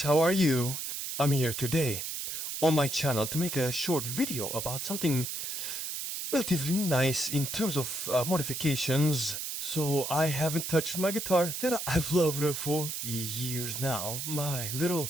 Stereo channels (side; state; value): right; noise; hiss, 4 dB below the sound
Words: how are you? I'm here today on my channel to make a short video about something relatively nice in terms of modifications. So I haven't touched my guitar that I've loved for years now. My